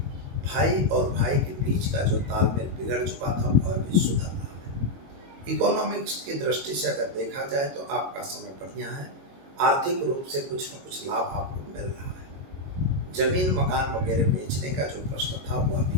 भाई और भाई के बीच का जो तालमेल बिगड़ चुका था वह भी सुधर रहा है। इकोनॉमिक्स की दृष्टि से अगर देखा जाए तो आपका समय बढ़िया है। आर्थिक रूप से कुछ न कुछ लाभ आपको मिल रहा है। जमीन मकान वगैरह बेचने का जो प्रश्न था वह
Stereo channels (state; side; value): late; left; 22 ms